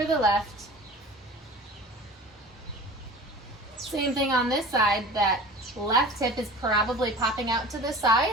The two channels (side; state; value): both; normal; correlation 0.40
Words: the left. Same thing on this side, that left hip is probably popping out to the